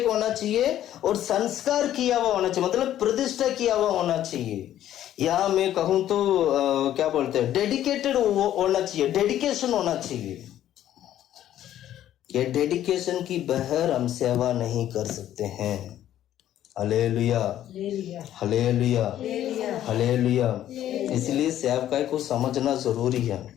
होना चाहिए और संस्कार किया हुआ होना चाहिए, मतलब प्रतिष्ठा किया हुआ होना चाहिए। यहाँ मैं कहूँ तो क्या बोलते हैं, डेडिकेटेड होना चाहिए, डेडिकेशन होना चाहिए। ये डेडिकेशन की बगैर हम सेवा नहीं कर सकते हैं। Hallelujah, hallelujah, hallelujah. इसलिए सेवकाई को समझना जरूरी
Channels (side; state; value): right; quieter; 12.0 dB